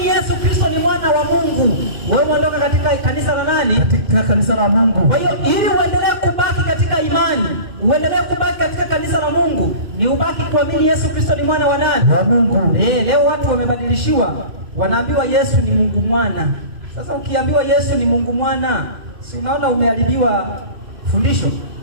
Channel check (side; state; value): left; late; 2.6 ms